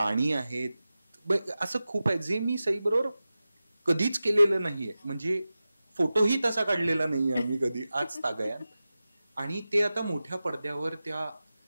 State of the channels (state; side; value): inverted; both; correlation -0.95